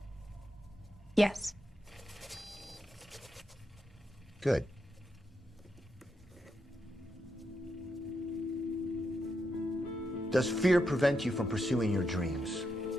Yes. Good. Does fear prevent you from pursuing your dreams?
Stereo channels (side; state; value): both; normal; correlation 0.83